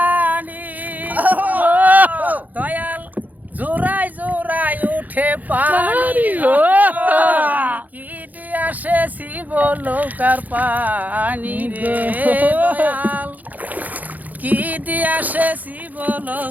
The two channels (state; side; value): late; left; 0.081 ms